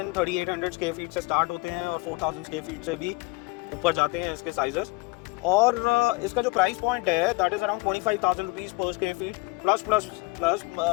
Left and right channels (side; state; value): right; quieter; 24.9 dB